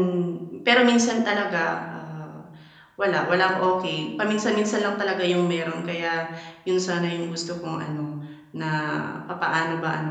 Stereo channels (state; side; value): identical; both; correlation 1.00